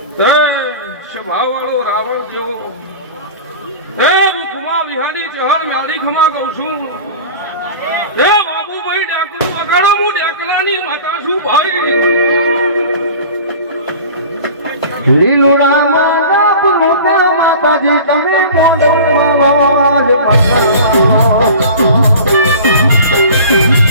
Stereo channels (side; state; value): both; inverted; correlation -0.39